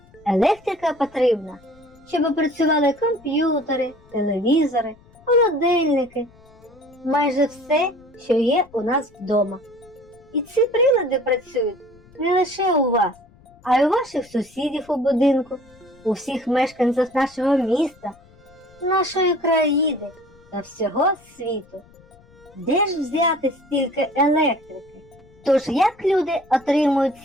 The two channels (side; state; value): left; noise; rumble, 27 dB below the sound